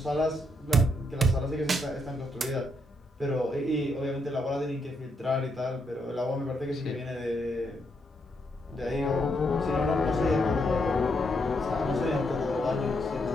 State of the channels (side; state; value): both; normal; correlation 0.78